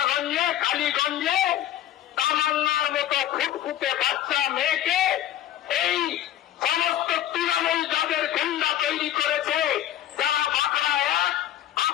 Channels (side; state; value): right; quieter; 12.1 dB